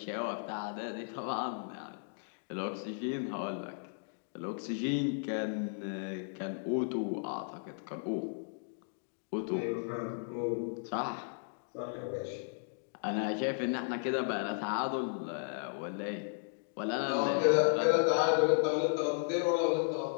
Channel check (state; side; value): silent; right; digital silence